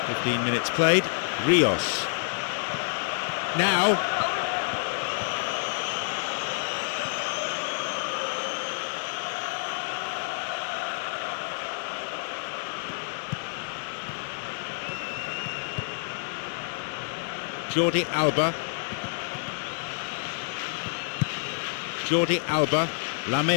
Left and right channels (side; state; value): right; silent; 59 dB below the other